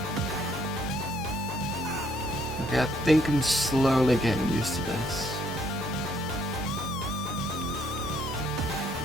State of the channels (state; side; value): normal; both; correlation 0.68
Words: Okay, I think I'm slowly getting used to this.